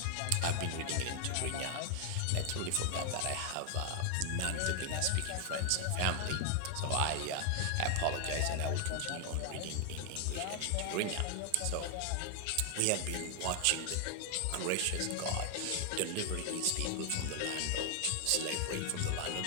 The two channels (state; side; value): different; both; correlation 0.00